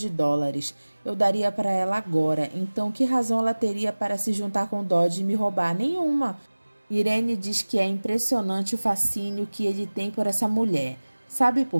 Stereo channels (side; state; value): both; inverted; correlation -1.00